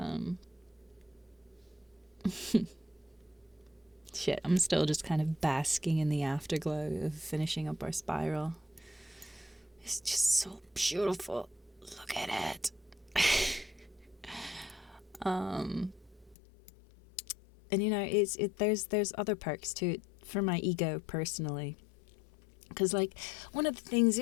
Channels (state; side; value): drops out; right; at 16.4 s